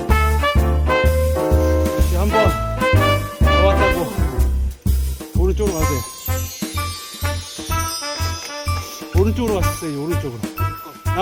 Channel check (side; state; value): both; identical; correlation 1.00